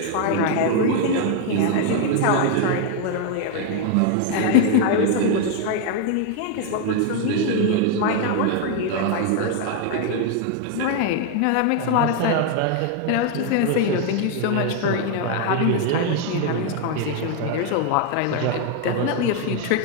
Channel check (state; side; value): different; both; correlation 0.01